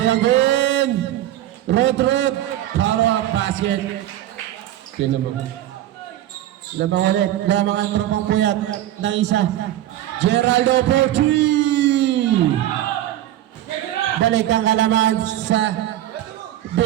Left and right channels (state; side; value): quieter; left; 13.2 dB